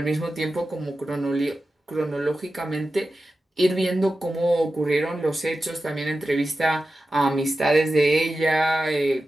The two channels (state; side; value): normal; both; correlation 0.93